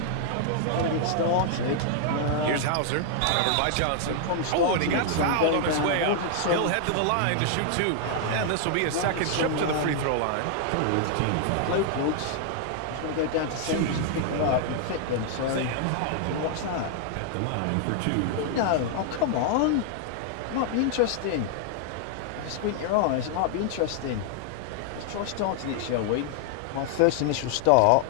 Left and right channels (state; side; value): different; both; correlation -0.01